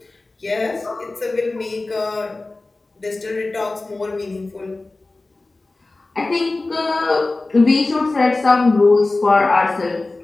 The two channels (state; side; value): quieter; right; 3.2 dB